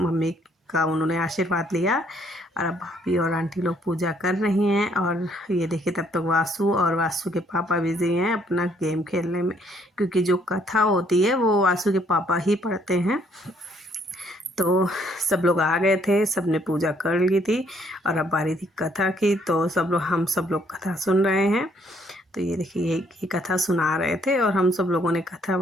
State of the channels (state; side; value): normal; both; correlation 0.67